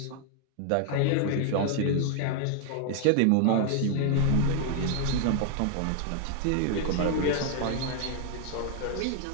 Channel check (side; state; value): both; different; correlation 0.00